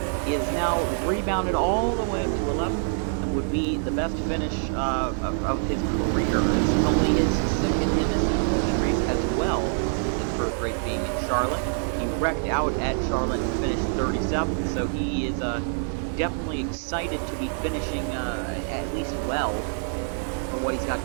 is now rebounded all the way up to 11th. Would be the best finish of his career. It's only his second MSCCP race as well. His first race being in Charlotte. He wrecked out at Charlotte and finished 37th, so he is definitely excited to be finishing at least well for what he's got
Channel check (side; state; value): left; silent; 59 dB below the other